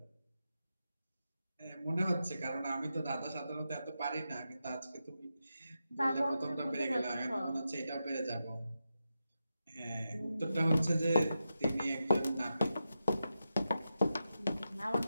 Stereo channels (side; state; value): both; inverted; correlation -0.89